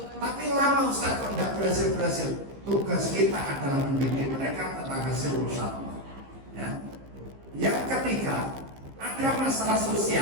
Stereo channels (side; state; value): left; late; 15 ms